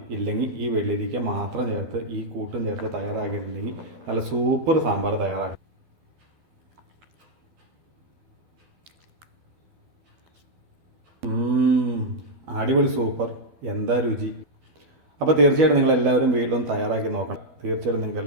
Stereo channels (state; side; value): late; left; 12 ms